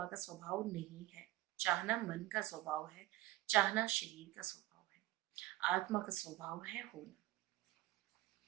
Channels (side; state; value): left; quieter; 16.6 dB